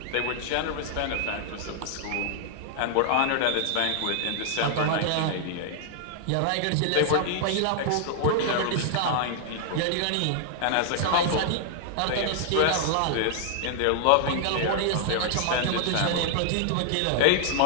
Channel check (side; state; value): both; different; correlation -0.01